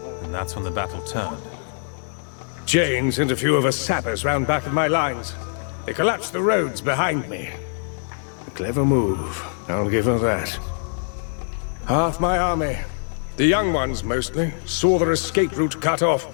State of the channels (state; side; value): silent; right; digital silence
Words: and that's when the battle turned. Jane sent a few of her sappers round back of my lines. They collapsed the roads behind me. A clever move, I'll give her that. Half my army, the young ones mostly, saw their escape route cut off.